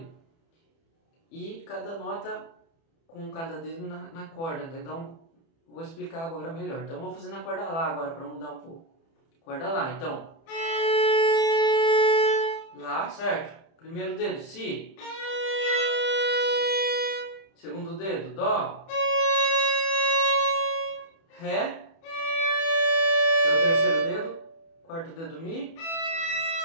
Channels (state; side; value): late; right; 30 ms